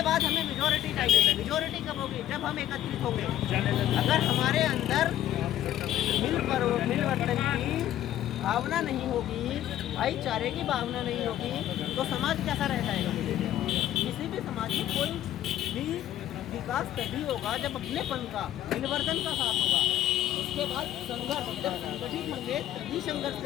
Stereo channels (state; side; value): quieter; right; 12.6 dB